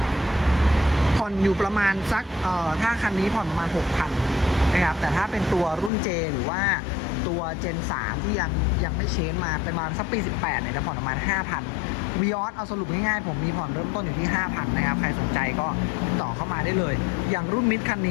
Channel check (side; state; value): right; drops out; at 5.9 s